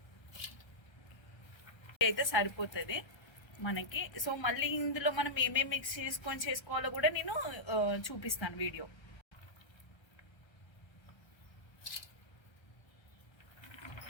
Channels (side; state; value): right; late; 1.3 ms